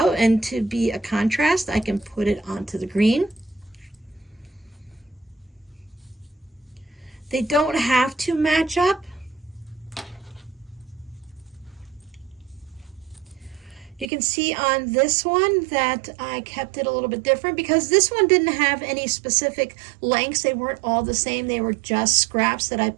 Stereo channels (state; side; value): drops out; left; at 14.1 s